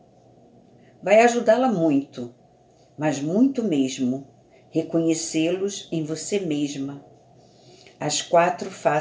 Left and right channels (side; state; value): both; identical; correlation 1.00